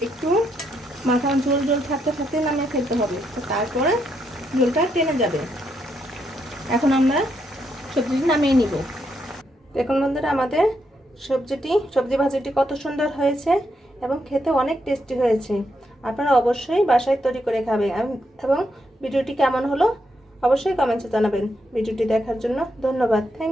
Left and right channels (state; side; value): normal; both; correlation 0.79